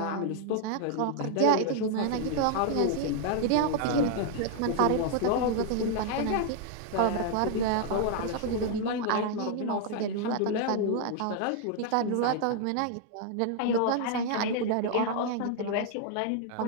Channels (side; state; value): both; different; correlation 0.00